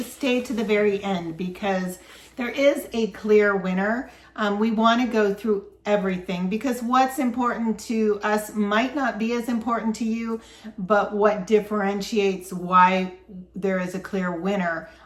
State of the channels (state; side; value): identical; both; correlation 1.00